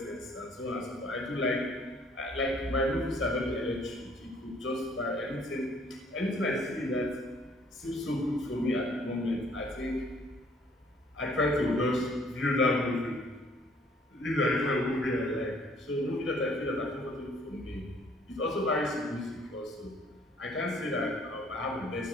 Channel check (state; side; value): normal; both; correlation 0.60